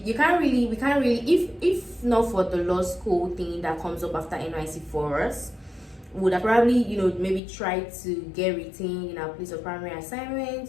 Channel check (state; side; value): drops out; right; at 7.4 s